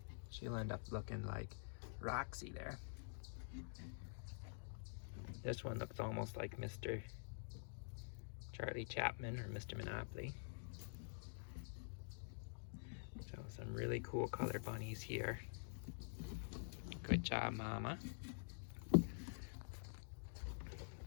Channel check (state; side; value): silent; right; digital silence